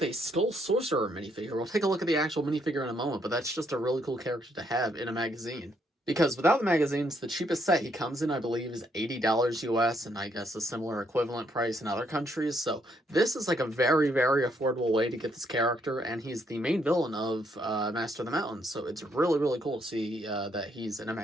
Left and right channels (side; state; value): both; normal; correlation 0.73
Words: a Skull Sorcerer minifigure. We'll take a look at the actual minifigure in a moment, but that's just a really cool character to have in a magazine. Because without the magazines, the cheapest set he comes in, I believe, is $80 US, and I guess a similar equivalent price in other countries. So this is like a very, very affordable way to get this character, and he's the main villain of Master of the Mountains. So it's really, really cool to see that he's in a